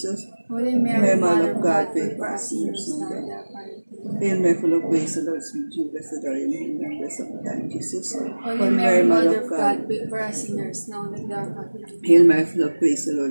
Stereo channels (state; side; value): inverted; both; correlation -1.00